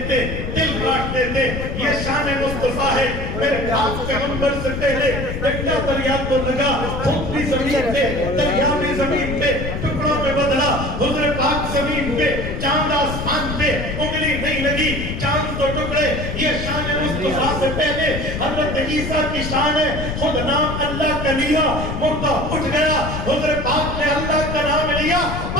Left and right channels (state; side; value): noise; left; rumble, 5 dB below the sound